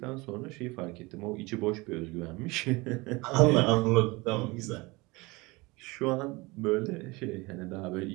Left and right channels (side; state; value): left; quieter; 24.0 dB